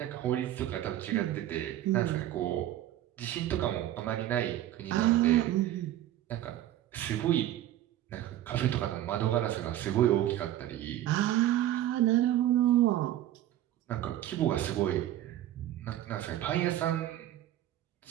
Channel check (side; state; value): left; quieter; 13.1 dB